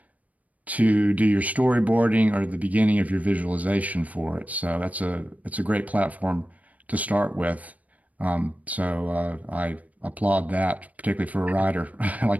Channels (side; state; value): left; late; 0.071 ms